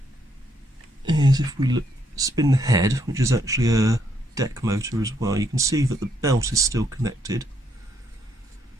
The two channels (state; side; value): normal; both; correlation 0.73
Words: is if we look, spin the head, which is actually a deck motor as well, you can see that the belt is still connected